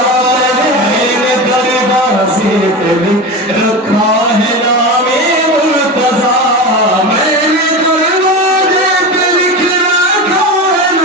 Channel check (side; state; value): both; normal; correlation 0.24